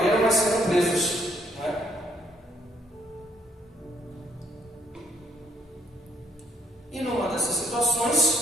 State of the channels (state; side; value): normal; both; correlation 0.68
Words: mas sendo presos, né? E numa dessas